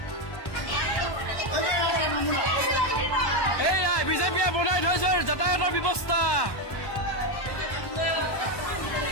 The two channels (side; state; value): right; late; 1.1 ms